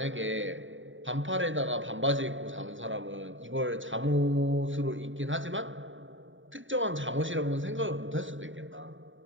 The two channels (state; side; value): late; left; 0.56 ms